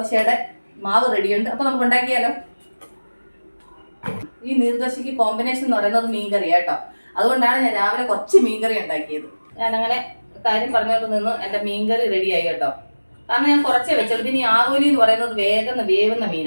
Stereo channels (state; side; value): inverted; both; correlation -1.00